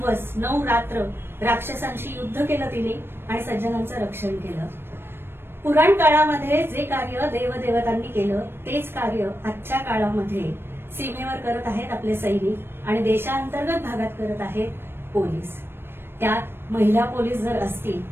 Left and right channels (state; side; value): late; left; 0.11 ms